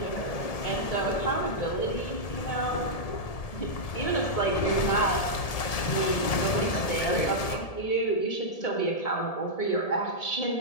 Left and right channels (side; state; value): right; late; 1.7 ms